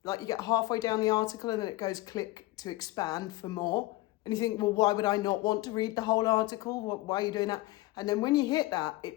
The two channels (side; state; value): right; quieter; 19.4 dB